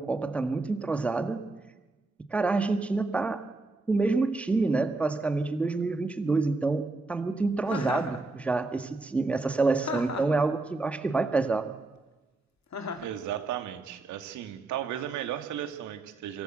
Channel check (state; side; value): quieter; left; 3.3 dB